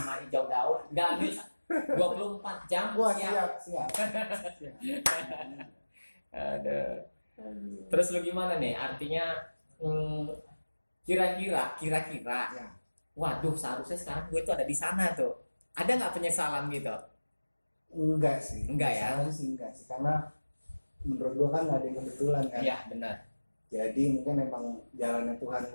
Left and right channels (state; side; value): inverted; both; correlation -1.00